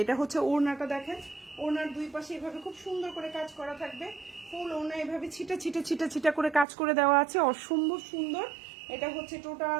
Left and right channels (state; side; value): drops out; left; at 6.7 s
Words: এটা হচ্ছে ওড়নাটা, দেখেন ওড়নার দুই পাশে এভাবে খুব সুন্দর করে কাজ করা থাকবে, ফুল ওড়না এভাবে ছিটা করে কাজ করে দেওয়া আছে, অসম্ভব সুন্দর। এটা হচ্ছে